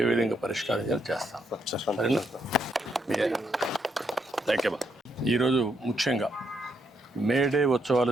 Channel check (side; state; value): both; normal; correlation 0.77